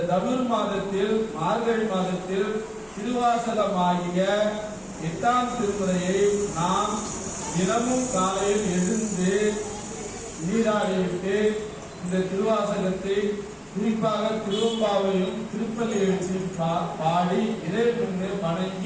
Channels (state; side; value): identical; both; correlation 1.00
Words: தனுர் மாதத்தில் மார்கழி மாதத்தில் திருவாசகமாகிய 8ஆம் திருமுறையை நாம் தினமும் காலையில் எழுந்து நீராடிவிட்டு இந்த திருவாசகத்தை குறிப்பாக திருவம்பாவையும் திருப்பள்ளி எழுச்சியும் பாடி இறைவனை